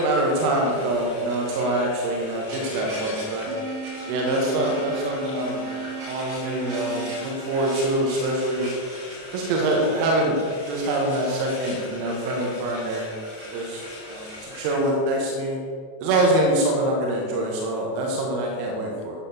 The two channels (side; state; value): left; late; 37 ms